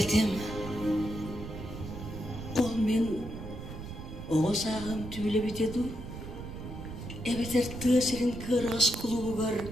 ол мен оғыз ағым түйлі бітеду, әбетер тысырын кырғыз кулугар,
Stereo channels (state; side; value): noise; right; rumble, 9 dB below the sound